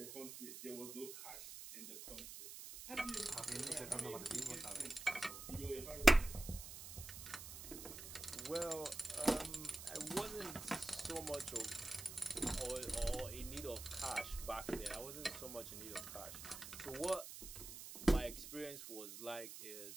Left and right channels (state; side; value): noise; right; hiss, 10 dB below the sound